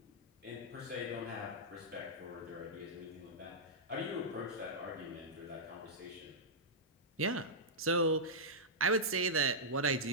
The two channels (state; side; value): normal; both; correlation -0.11